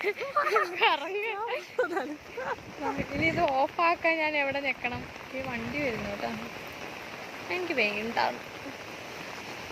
കറങ്ങ്. ഇനി ഇത് ഓഫാക്കാൻ ഞാൻ എവിടെ നിൽക്കണം? ഈ വണ്ടി വരുന്നു കേട്ടോ. എനിക്ക് വേണ്ട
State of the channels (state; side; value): identical; both; correlation 1.00